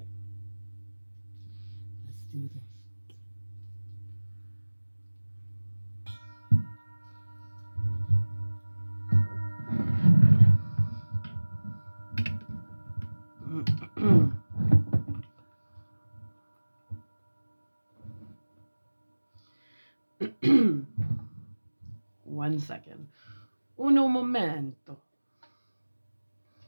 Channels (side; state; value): both; inverted; correlation -1.00